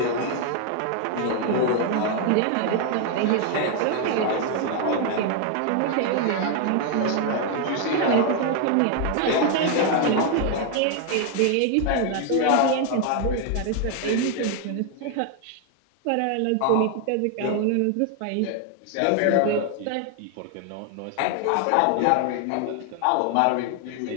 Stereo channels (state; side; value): different; both; correlation 0.00